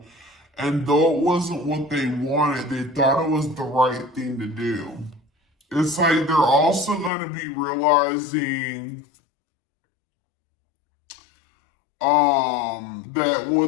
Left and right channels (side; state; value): right; drops out; at 7.1 s